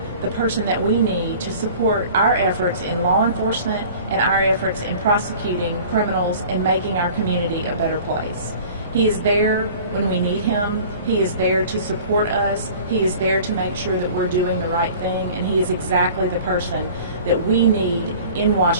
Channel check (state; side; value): inverted; both; correlation -0.45